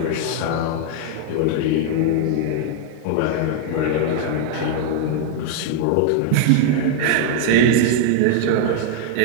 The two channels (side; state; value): both; different; correlation 0.00